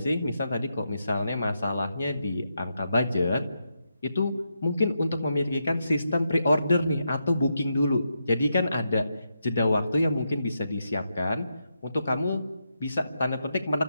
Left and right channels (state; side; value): inverted; both; correlation -0.84